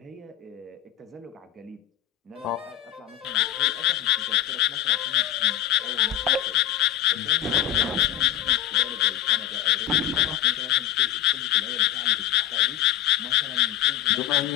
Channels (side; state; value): right; quieter; 12.5 dB